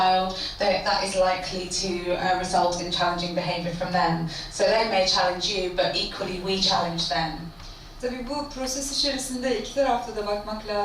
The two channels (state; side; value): identical; both; correlation 1.00